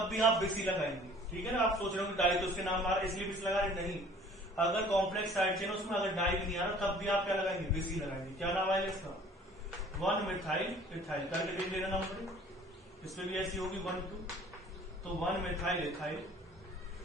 भी आप बिस ही लगाएंगे, ठीक है ना। आप सोच रहे हो कि डाई तो उसके नाम आ रहा है इसलिए बिस लगा रहे, नहीं। अगर कॉम्प्लेक्स साइड चेन उसमें अगर डाई भी नहीं आ रहा तब भी आप क्या लगाएंगे? बिस ही लगाएंगे। क्या नाम आएगा इसका? 1 मिथाइल इथाइल करके देख लेना नंबर। इसमें भी ऐसी होगी 1 2, तो 1 मिथाइल इथाइल।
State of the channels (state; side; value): normal; both; correlation 0.51